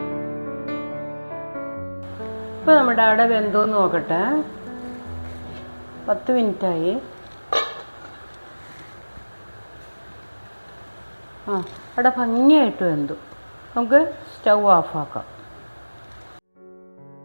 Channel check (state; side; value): inverted; both; correlation -1.00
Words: ഇപ്പോൾ നമ്മുടെ അട വെന്തോന്ന് നോക്കട്ടെ. 10 മിനിറ്റായി. അട ഭംഗിയായിട്ട് വെന്തു. നമുക്ക് സ്റ്റൗ ഓഫാക്കാം.